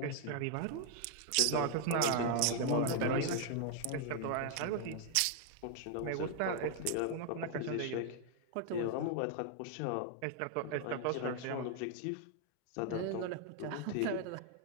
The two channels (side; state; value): both; different; correlation 0.00